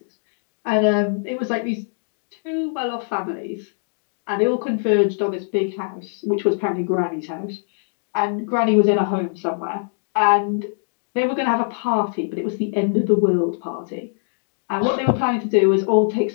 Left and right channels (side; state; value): right; silent; digital silence